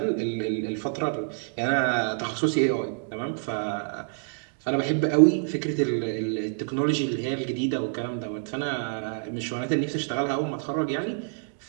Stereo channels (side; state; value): left; silent; digital silence